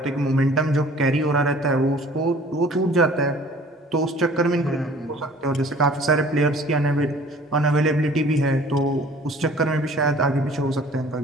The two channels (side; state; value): both; normal; correlation 0.51